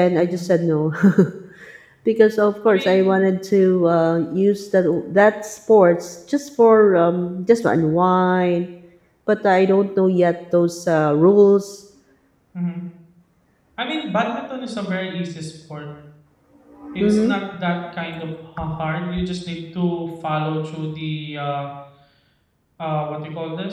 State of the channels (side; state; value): both; identical; correlation 1.00